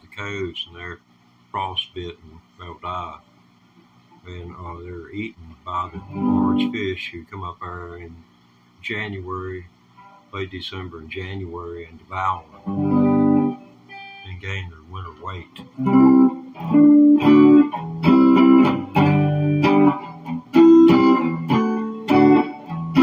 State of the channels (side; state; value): both; identical; correlation 1.00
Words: the coves, and they're frostbitten and they'll die. And they're eaten by the large fish who come up there in January, late December and January, and devour them and gain their winter weight.